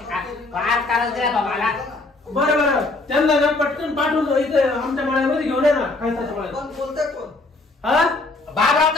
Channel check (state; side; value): quieter; right; 3.2 dB